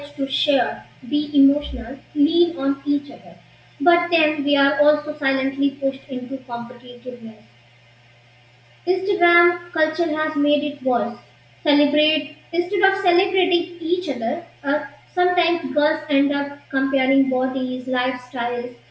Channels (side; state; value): both; identical; correlation 1.00